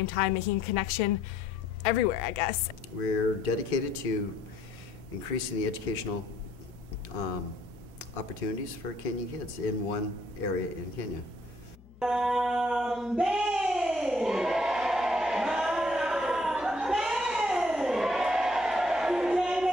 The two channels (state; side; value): noise; left; hum, 23 dB below the sound